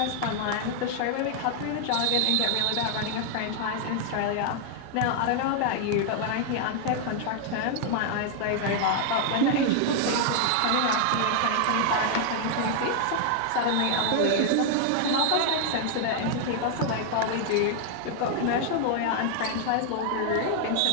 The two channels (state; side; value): different; both; correlation 0.00